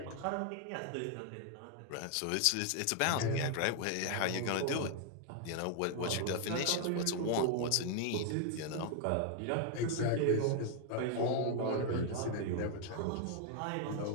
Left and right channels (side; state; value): both; different; correlation 0.00